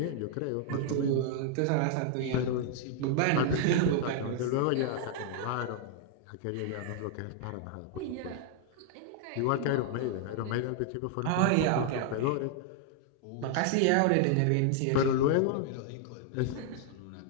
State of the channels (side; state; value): both; different; correlation 0.00